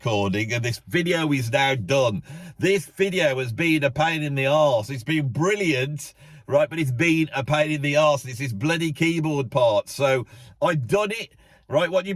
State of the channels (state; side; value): identical; both; correlation 1.00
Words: and this video is now done. This video has been a pain in the arse. It's been brilliant, right? But it's been a pain in the arse. It's this bloody keyboard part. So I've done it. Right, what